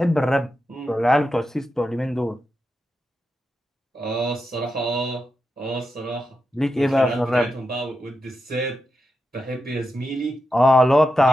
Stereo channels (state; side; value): normal; both; correlation 0.88